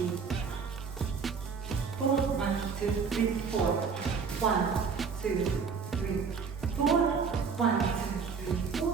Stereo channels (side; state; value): left; quieter; 5.7 dB